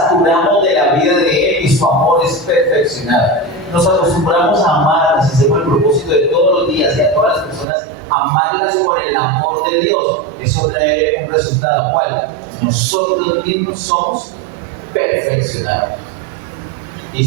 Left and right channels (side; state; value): left; drops out; at 7.7 s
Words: de la vida de Él y su amor es perfeccionado. Nos acostumbramos a amarlas, hacemos el propósito de todos los días y a todas las personas, amarlas con el amor de Dios. Eso trae un resultado. ¿Cuál? Nosotros mismos somos perfeccionados. Y